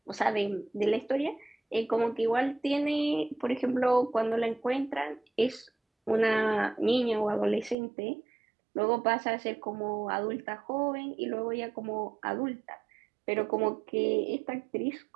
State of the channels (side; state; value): left; drops out; at 7.8 s